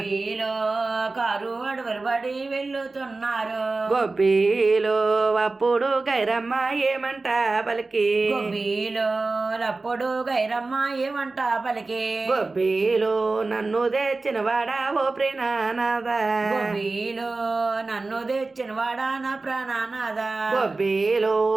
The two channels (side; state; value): left; quieter; 3.5 dB